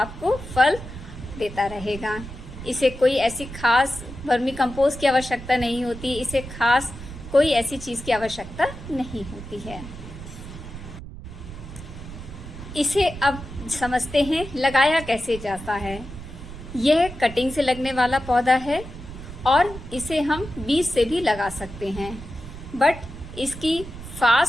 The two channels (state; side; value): noise; right; rumble, 13 dB below the sound